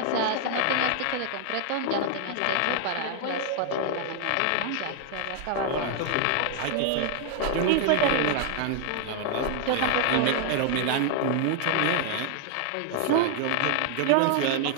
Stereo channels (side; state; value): both; different; correlation 0.00